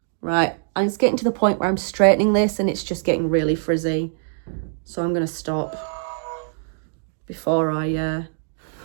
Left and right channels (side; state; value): left; silent; digital silence